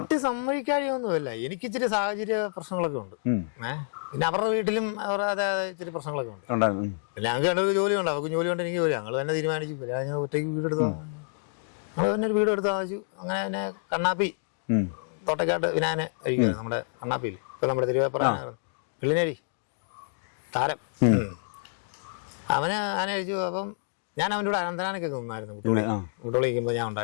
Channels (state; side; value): silent; right; digital silence